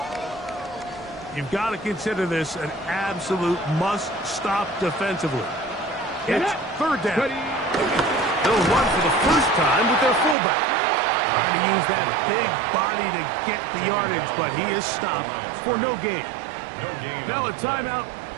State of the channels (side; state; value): left; drops out; at 10.4 s